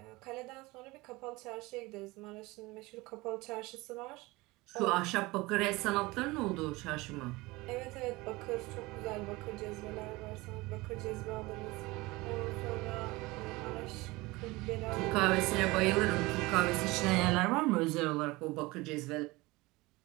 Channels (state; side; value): quieter; left; 21.9 dB